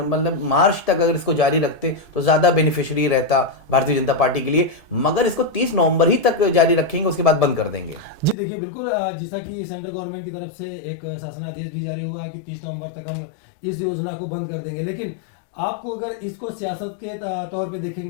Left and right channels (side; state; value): right; drops out; at 8.3 s